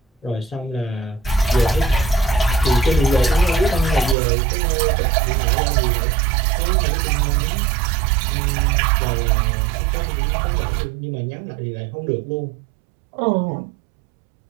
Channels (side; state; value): left; drops out; at 4.2 s